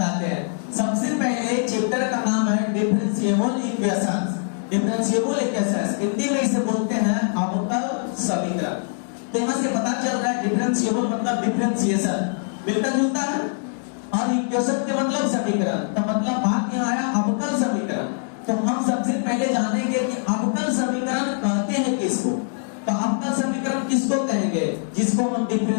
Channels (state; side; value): silent; right; digital silence